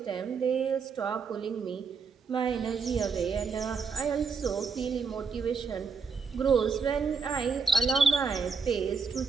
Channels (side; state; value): left; quieter; 5.2 dB